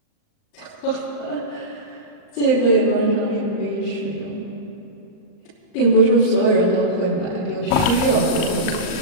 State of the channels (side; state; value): right; late; 39 ms